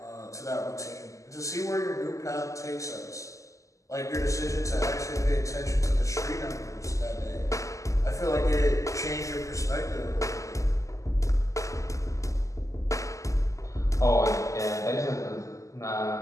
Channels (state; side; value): late; right; 0.16 ms